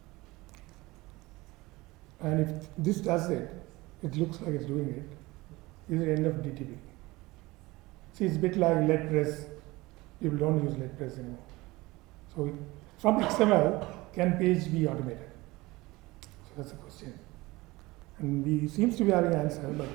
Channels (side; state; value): left; quieter; 21.1 dB